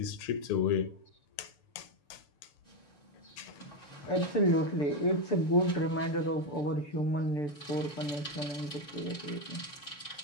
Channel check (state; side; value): late; right; 6.8 ms